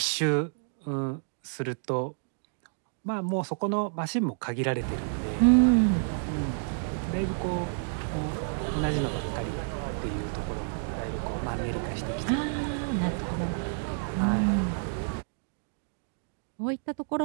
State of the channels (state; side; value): silent; left; digital silence